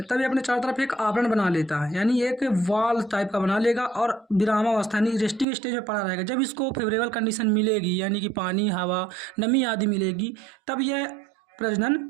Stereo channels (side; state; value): left; drops out; at 5.5 s